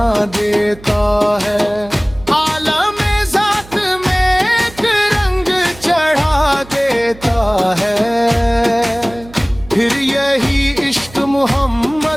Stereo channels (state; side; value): noise; right; hum, 20 dB below the sound